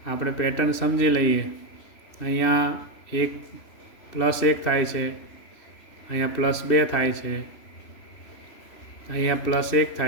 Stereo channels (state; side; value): late; right; 2.7 ms